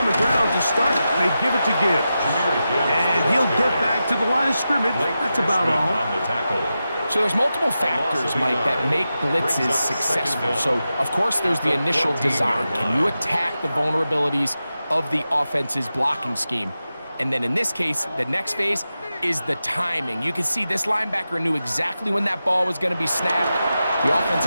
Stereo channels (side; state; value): both; inverted; correlation -0.91